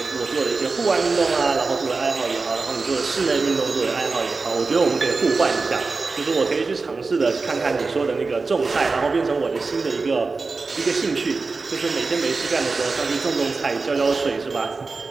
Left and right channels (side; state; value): left; quieter; 4.1 dB